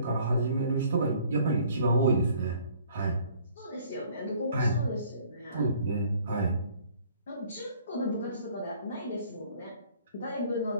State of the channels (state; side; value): inverted; both; correlation -0.57